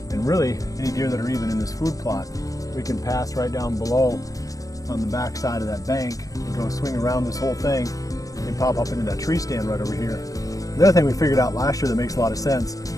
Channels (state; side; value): late; right; 0.17 ms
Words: and really any deer that are even in this food plot. We can pass right down below on the back side of that bank and go swing around this whole thing and pop up into that tree stand right over here. The other thing we figured out last year that makes a lot of sense,